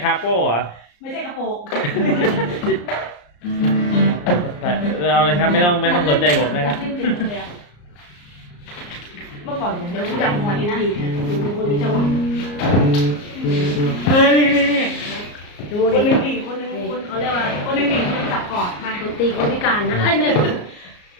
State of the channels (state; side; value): late; right; 34 ms